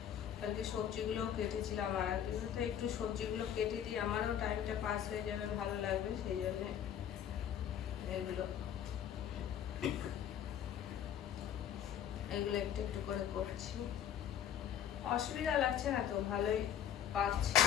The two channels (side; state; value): right; quieter; 9.7 dB